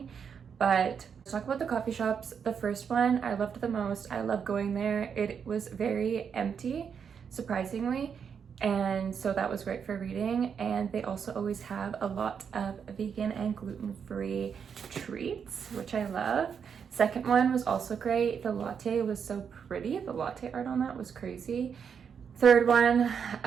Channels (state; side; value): quieter; left; 7.0 dB